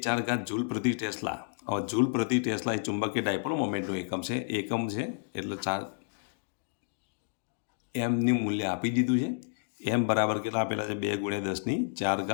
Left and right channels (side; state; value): right; silent; digital silence